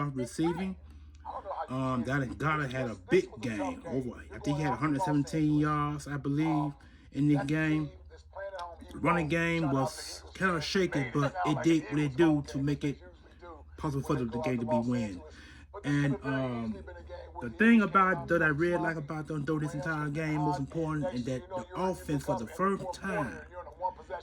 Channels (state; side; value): identical; both; correlation 1.00